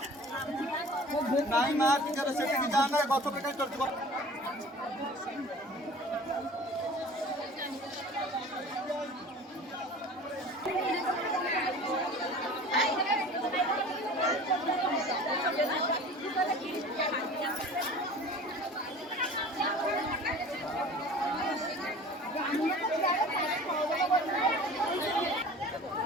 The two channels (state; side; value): normal; both; correlation 0.42